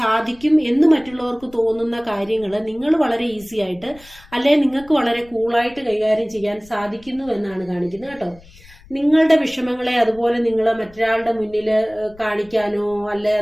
എന്ന് മറ്റുള്ളവർക്ക് തോന്നുന്ന കാര്യങ്ങൾ നിങ്ങൾ വളരെ ഈസി ആയിട്ട്, അല്ലെങ്കിൽ നിങ്ങൾക്ക് വളരെ കൂളായിട്ട് കൈകാര്യം ചെയ്യാൻ സാധിക്കുന്നു എന്നാണ് കാണിക്കുന്നത് കേട്ടോ. നിങ്ങളുടെ വിഷമങ്ങളെ അതുപോലെ നിങ്ങൾ മറ്റൊരാളുടെ മുന്നിൽ കാണിക്കാനോ അല്ലെ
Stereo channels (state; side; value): noise; left; rumble, 24 dB below the sound